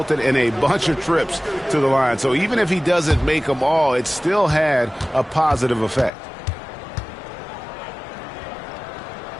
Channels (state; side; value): drops out; right; at 6.1 s